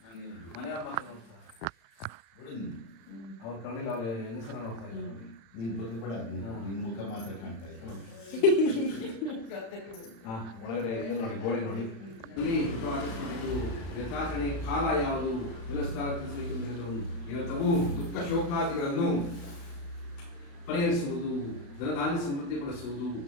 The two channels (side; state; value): right; late; 35 ms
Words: ಮನೆಯವ್ರ ಮಾತ್ರ ನೋಡ್ತಾರೆ. ಅವ್ರ ಕಣ್ಣಿಲ್ಲ, ಅವ್ರ ಹೆಂಗಸರ ನೋಡ್ತಾ ಇಲ್ಲ ನೋಡಿ. ನೀನು ಬಗ್ಗಬೇಡ, ನಿನ್ನ ಮುಖ ಮಾತ್ರ ಕಾಣ್ತಾ ಇದೆ. ಹಾಂ, ಒಳಗಡೆ ಇದು ನೋಡಿ, ಗೋಡೆ ನೋಡಿ. ಇಲ್ಲಿ ಆಚರಿಸಬೇಕು ಯಥಾಚರಣೆ ಕಾಲ ಯಾವುದು ವ್ಯವಸ್ಥೆ ತಿಳಿಸಬೇಕೆಂದು ಇವತ್ತವು ದುಃಖ ಶೋಕಾದಿಗಳನ್ನು ಪರಿಹರಿಸುವುದು, ಧನಧಾನ್ಯ ಸಮೃದ್ಧಿಪಡಿಸುವುದು,